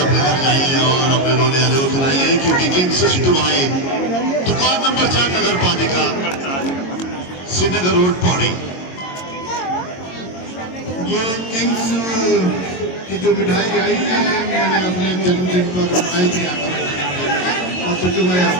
अपने घर जाइए और अपने रोने वाले को खिलाइए क्योंकि किंग्स सिट्टू भाई दुकान नंबर 4 नगर पालिका श्रीनगर रोड पौड़ी। ये किंग्स की जो मिठाई आई है मैंने अपने जन्मदिन पर आई थी और सिट्टू भाई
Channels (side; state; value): right; late; 22 ms